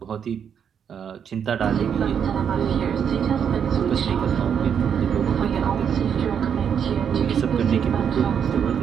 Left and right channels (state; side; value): quieter; left; 7.8 dB